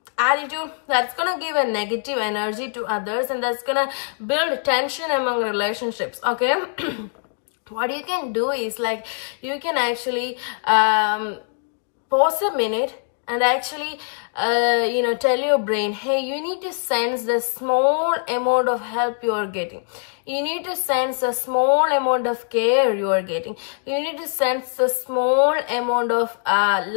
attitude that's gonna give a negative energy to others, and that's gonna build tension among relationships. Okay. What you can do is like you can actually pause a minute and actually tell your brain, hey, you need to sense the small amount of help you are getting. You need to sense the small amount of care you are getting. You need to sense the small amount of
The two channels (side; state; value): right; silent; digital silence